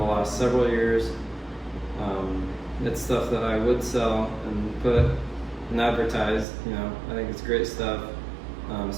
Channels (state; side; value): drops out; left; at 6.5 s